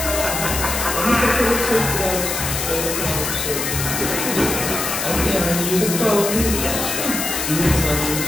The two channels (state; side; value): noise; left; hiss, 2 dB below the sound